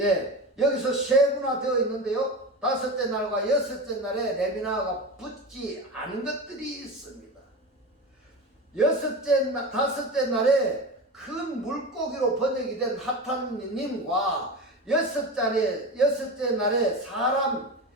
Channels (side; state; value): both; normal; correlation 0.26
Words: 여기서 세분화되어 있는데요. 다섯째 날과 여섯째 날에 레미나흐가 붙지 않은 것들이 있습니다. 다섯째 날에 큰 물고기로 번역이 된 하탄님과 여섯째 날에 사람